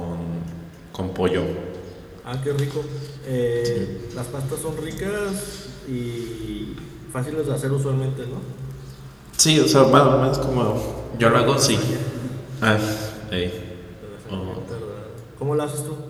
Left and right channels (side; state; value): both; identical; correlation 1.00